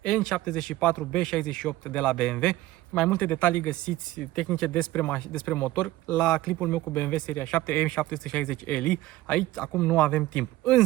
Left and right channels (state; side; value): quieter; left; 16.7 dB